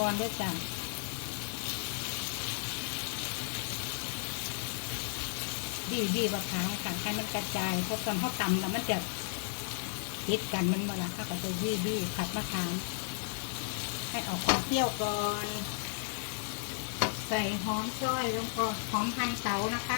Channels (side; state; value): right; silent; digital silence